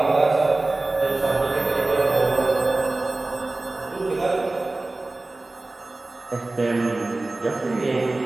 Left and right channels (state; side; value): quieter; left; 3.0 dB